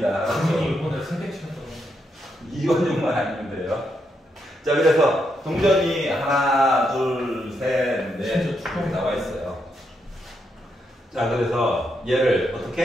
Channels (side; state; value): both; normal; correlation 0.80